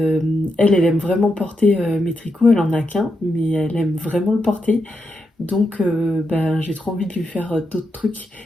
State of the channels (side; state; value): both; normal; correlation 0.84